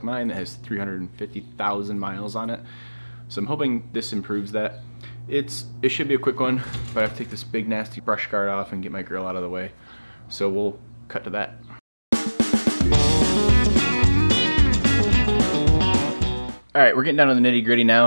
mine that has 350,000 miles on it. So I'm hoping this improves that. It should be a quick one, but I have to take this big nasty brush guard off and get my grill out of the way. So we'll cut to that. Alright, we're getting down to the nitty gritty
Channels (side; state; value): both; inverted; correlation -1.00